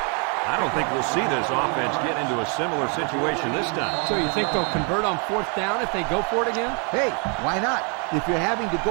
I don't think we'll see this offense get into a similar situation this time. So you think they'll convert on 4th down if they go for it again? Hey, why not? If you're having to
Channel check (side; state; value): left; quieter; 36.9 dB